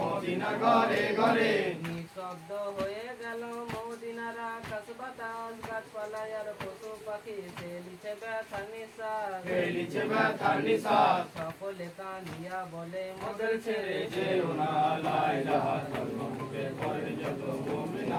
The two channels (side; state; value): both; identical; correlation 1.00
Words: ঘরে ঘরে নিঃশব্দ হয়ে গেল মদিনার আকাশ বাতাস গাছপালায় আর পশু পাখি ফেলিছে ব্যথা নিঃশ্বাস ফেলিছে ব্যথার নিঃশ্বাস সকলে কাঁদিয়া বলে মোদের ছেড়ে যেও না লা ইলাহা কলমা মুখে পড়েন যত